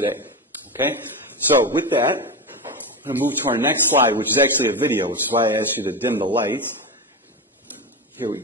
okay? So with that, I'm going to move to our next slide, which is actually a video, which is why I asked you to dim the lights. Here we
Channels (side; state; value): both; normal; correlation 0.19